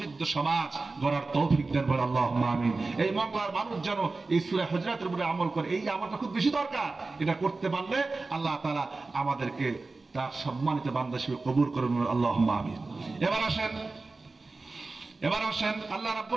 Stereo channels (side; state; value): left; quieter; 3.6 dB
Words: সমাজ গড়ার তৌফিক দেন, বলে আল্লাহুম্মা আমিন। এই বাংলার মানুষ যেন এই সূরা হুজুরাতের উপরে আমল করে, এই আমলটা খুব বেশি দরকার। এটা করতে পারলে আল্লাহ তাআলা আমাদেরকে তার সম্মানিত বান্দা হিসেবে কবুল করুন, আল্লাহুম্মা আমিন। এবার আসেন আল্লাহ